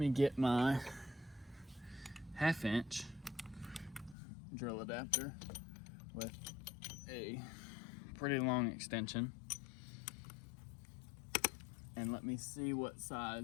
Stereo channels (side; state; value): right; drops out; at 4.2 s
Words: get my 1/2 inch drill adapter with a pretty long extension, and let me see what